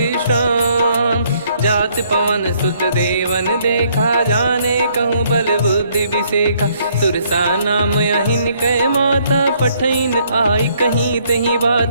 जात पवन सुत देवन देखा, जाने कहूँ बल बुद्धि विसेखा। सुरसा नाम अहिन कै माता, पठैन आई कहीं तहीं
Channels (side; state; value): both; inverted; correlation -0.67